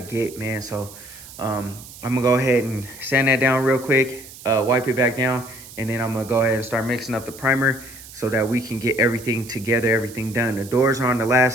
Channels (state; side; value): noise; right; hiss, 17 dB below the sound